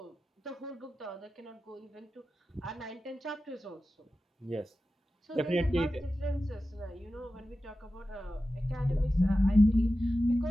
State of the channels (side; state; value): both; normal; correlation 0.93